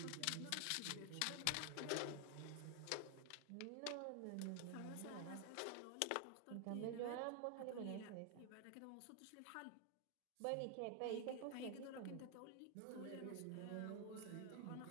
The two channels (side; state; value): both; different; correlation 0.00